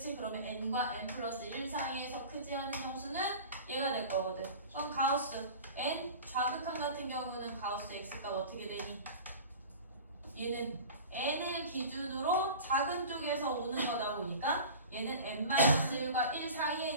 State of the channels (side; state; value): both; inverted; correlation -0.37